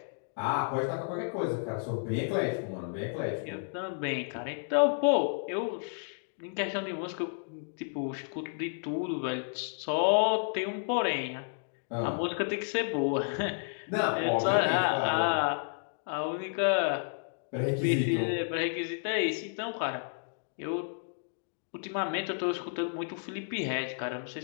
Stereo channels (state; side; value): silent; right; digital silence